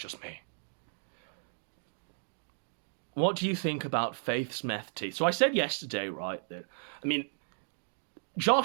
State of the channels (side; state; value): left; silent; digital silence